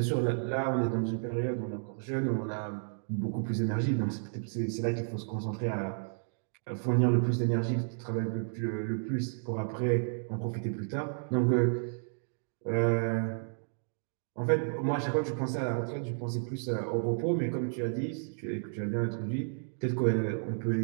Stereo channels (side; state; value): left; silent; digital silence